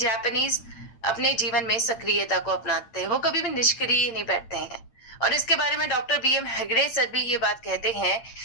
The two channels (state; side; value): late; right; 8.9 ms